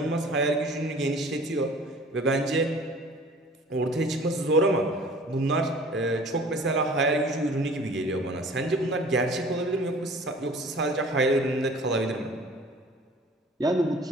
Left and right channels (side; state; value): both; normal; correlation 0.47